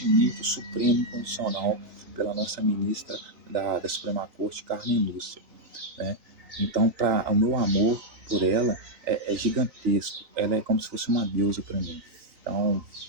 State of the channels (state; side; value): late; left; 3.9 ms